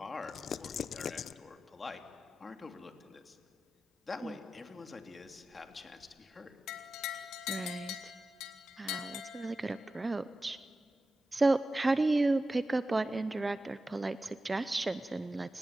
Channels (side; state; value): both; normal; correlation 0.93